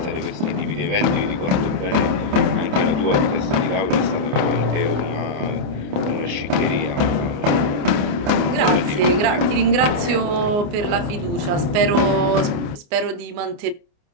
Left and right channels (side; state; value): left; late; 29 ms